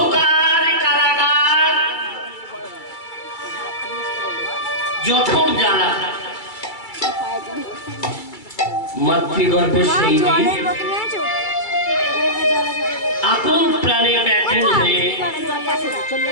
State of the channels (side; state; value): right; late; 2.3 ms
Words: কারাগার, জঠর জ্বালা। মাতৃগর্ভে সেই দিন আকুল প্রাণে ব্যাকুল হয়ে